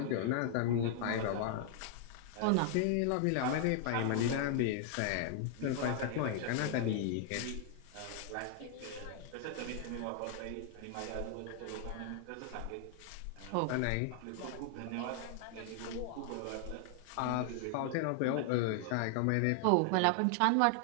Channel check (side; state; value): both; different; correlation 0.00